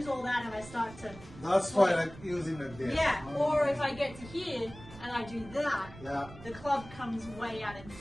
all that and I start to That's why like using like this. yeah. Or if I get to here and I do that, Yeah. the club comes way out in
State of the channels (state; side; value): noise; right; rumble, 17 dB below the sound